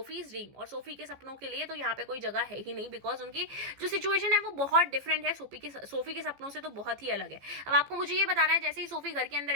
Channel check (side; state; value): left; late; 15 ms